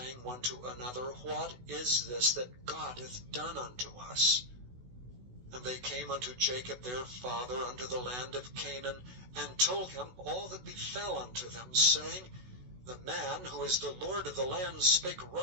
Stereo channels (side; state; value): left; late; 16 ms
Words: one to another, What is this that God hath done unto us? And they came unto Jacob their father unto the land of Canaan, and told him all that befell unto them, saying, The man who is the Lord of the land spake